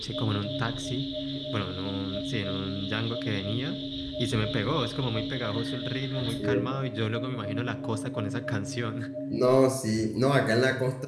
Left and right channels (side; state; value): both; identical; correlation 1.00